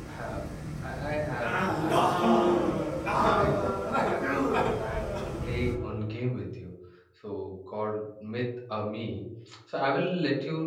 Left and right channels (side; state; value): both; identical; correlation 1.00